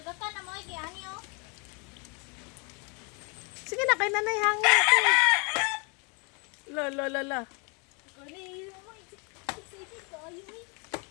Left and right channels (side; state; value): right; quieter; 33.9 dB